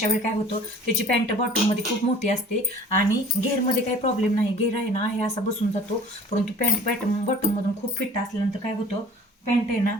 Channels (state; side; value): normal; both; correlation 0.47